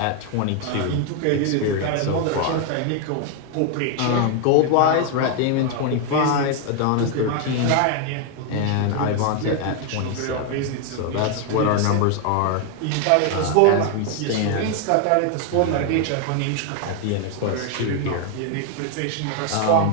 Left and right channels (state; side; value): different; both; correlation 0.01